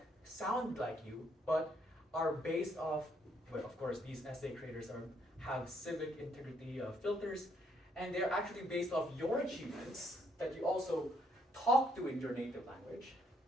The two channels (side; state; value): both; normal; correlation 0.71